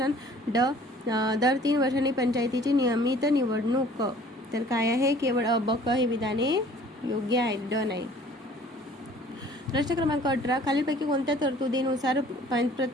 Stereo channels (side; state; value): both; normal; correlation 0.52